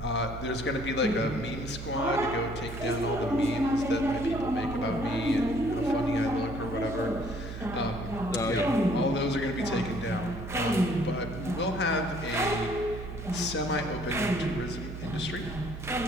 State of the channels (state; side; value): noise; right; hum, 9 dB below the sound